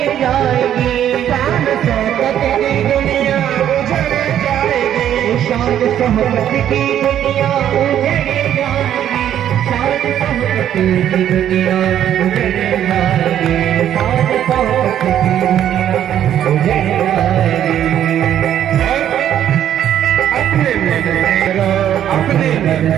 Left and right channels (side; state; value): left; quieter; 10.6 dB